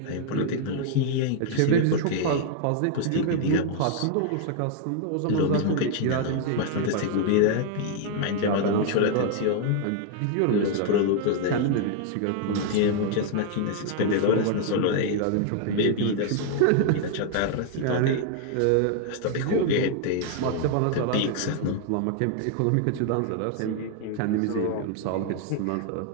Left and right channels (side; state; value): both; different; correlation 0.00